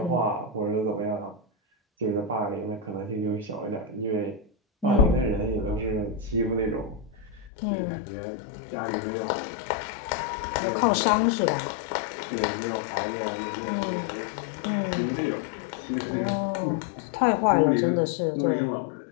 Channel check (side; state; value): right; drops out; at 7.5 s